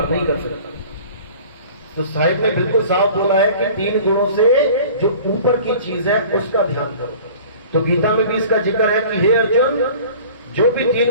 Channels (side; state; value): both; inverted; correlation -0.45